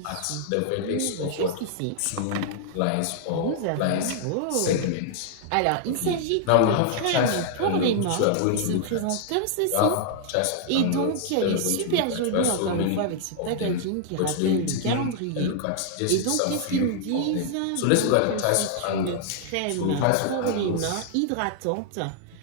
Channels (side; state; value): both; different; correlation 0.00